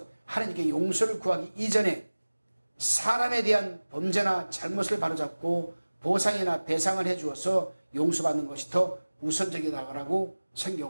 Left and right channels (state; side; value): inverted; both; correlation -1.00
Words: 하나님께 용서를 구하기 이전에 사람에 대한 범죄나 잘못을 바로잡고 보상이나 배상을 해주어서 용서받는 것이 더 우선적이라고